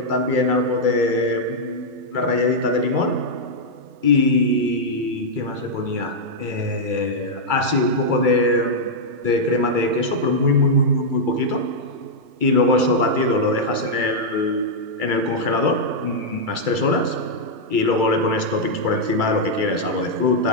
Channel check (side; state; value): left; late; 2.3 ms